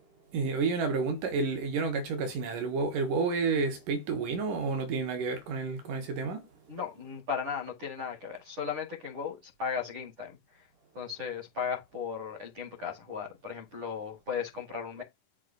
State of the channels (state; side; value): late; left; 11 ms